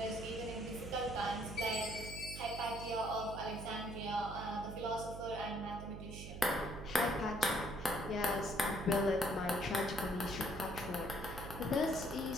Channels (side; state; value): right; noise; hum, 9 dB below the sound